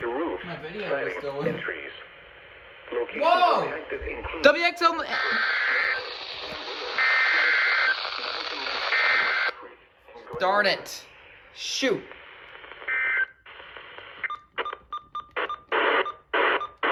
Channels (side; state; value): both; identical; correlation 1.00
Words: to roof, My video is siding, still and in. trees. Locations Whoa! impacted include WXL. Darn it. Shoot.